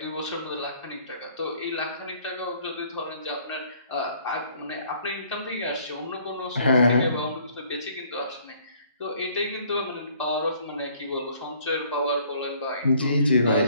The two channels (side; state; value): both; inverted; correlation -0.59